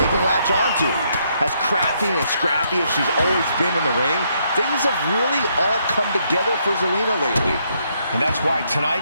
can latch onto. As crafty and scrappy as she's always been in the ring, things have really all come together for Zelina lately. And that's why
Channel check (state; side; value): inverted; both; correlation -0.74